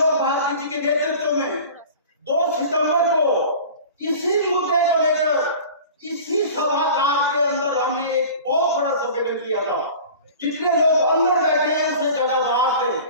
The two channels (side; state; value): both; inverted; correlation -0.40